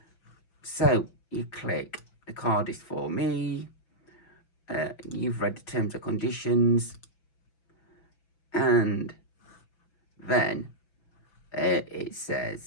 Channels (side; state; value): right; late; 5.9 ms